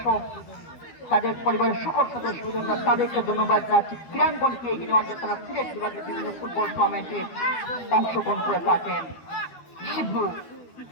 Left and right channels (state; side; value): late; right; 12 ms